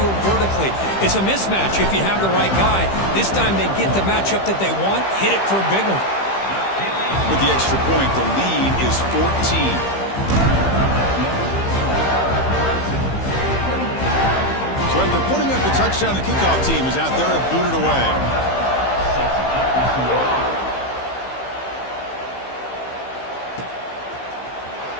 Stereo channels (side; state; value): right; late; 15 ms